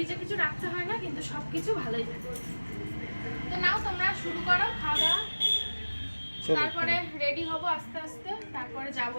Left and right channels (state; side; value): inverted; both; correlation -1.00